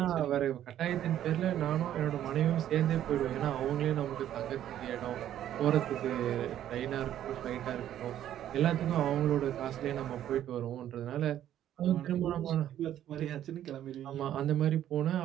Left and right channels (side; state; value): left; quieter; 11.4 dB